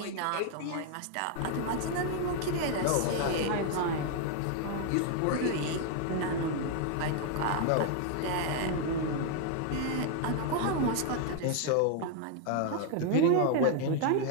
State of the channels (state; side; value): different; both; correlation 0.00